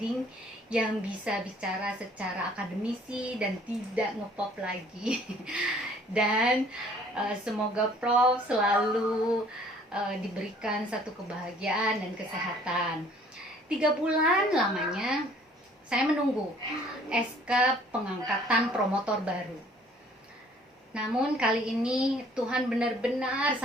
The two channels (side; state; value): both; normal; correlation 0.56